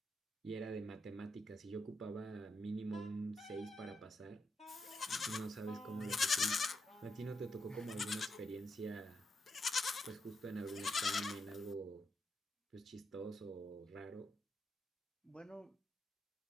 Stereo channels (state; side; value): normal; both; correlation 0.82